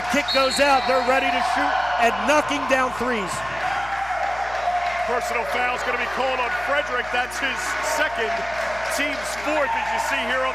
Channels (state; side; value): noise; left; hum, 18 dB below the sound